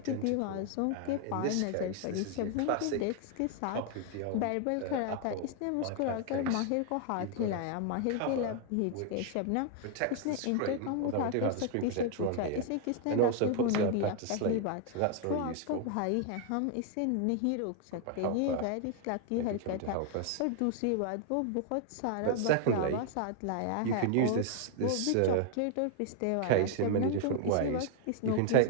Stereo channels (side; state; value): both; different; correlation 0.00